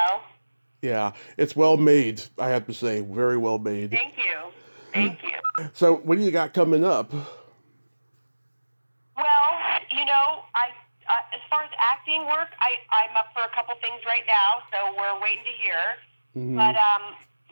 Yeah, it's well made, I have to say. Very well made. Thank you. Thank you. So, what do you got coming up? Well, as far as acting work, I'm up for a couple things right now, so we're waiting to hear. Mm-hmm. But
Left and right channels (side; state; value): both; inverted; correlation -1.00